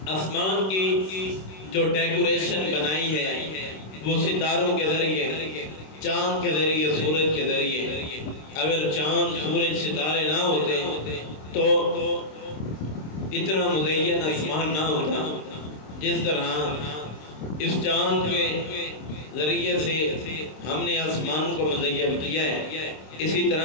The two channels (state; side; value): late; right; 26 ms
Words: آسمان کی جو ڈیکوریشن بنائی ہے وہ ستاروں کے ذریعے، چاند کے ذریعے، سورج کے ذریعے۔ اگر چاند، سورج، ستارے نہ ہوتے تو اتنا مزین آسمان نہ ہوتا۔ جس طرح اس چاند کے ذریعے سے ہم نے آسمان کو مزین کیا ہے، اسی